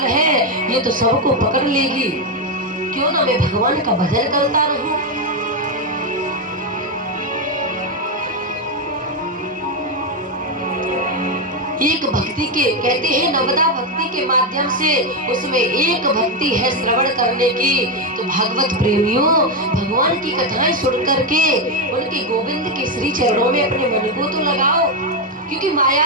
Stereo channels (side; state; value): both; normal; correlation 0.06